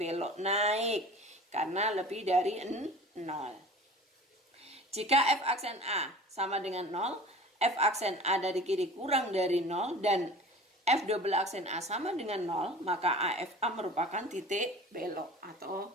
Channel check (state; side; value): normal; both; correlation 0.41